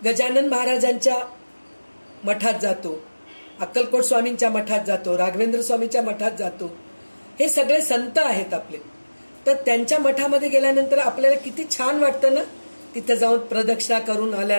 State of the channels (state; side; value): inverted; both; correlation -1.00